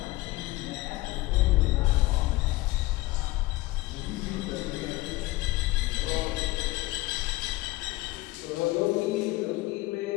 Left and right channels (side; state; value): right; quieter; 19.6 dB